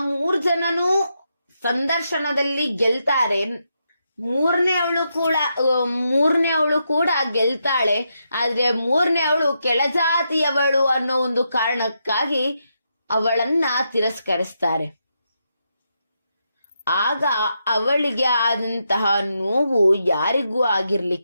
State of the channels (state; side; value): inverted; both; correlation -0.83